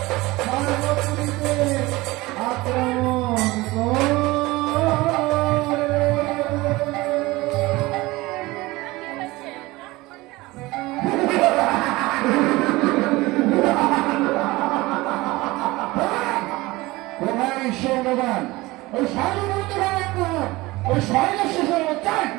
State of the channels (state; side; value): quieter; left; 20.6 dB